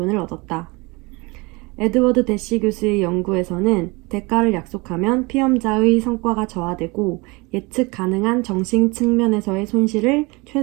얻었다. 에드워드 대시 교수의 연구에서는 대가를 약속하면 피험자의 성과가 저하되고 예측 가능한 정신 측면에서의 손실을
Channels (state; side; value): quieter; left; 26.1 dB